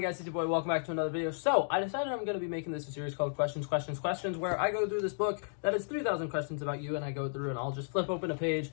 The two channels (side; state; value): right; silent; digital silence